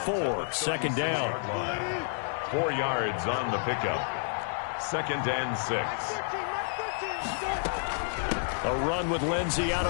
2nd down. 4 yards on the pickup. 2nd and 6. A run with Lindsey out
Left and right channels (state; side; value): silent; right; 58 dB below the other